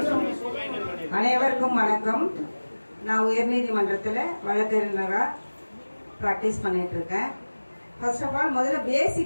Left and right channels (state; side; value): inverted; both; correlation -1.00